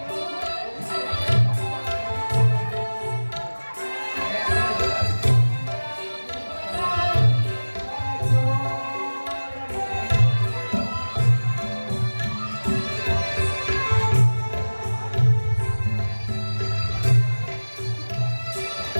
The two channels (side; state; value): both; inverted; correlation -1.00